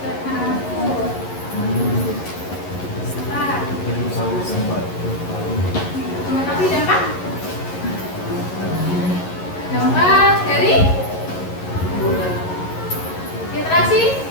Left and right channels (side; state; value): right; late; 11 ms